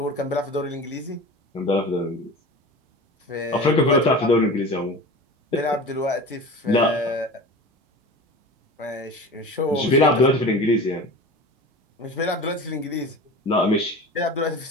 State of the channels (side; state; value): both; normal; correlation 0.34